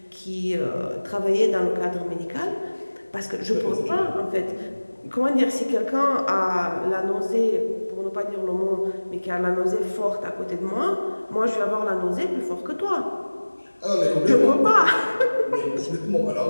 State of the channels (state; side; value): inverted; both; correlation -1.00